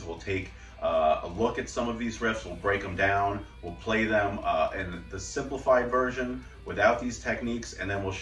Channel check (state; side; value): identical; both; correlation 1.00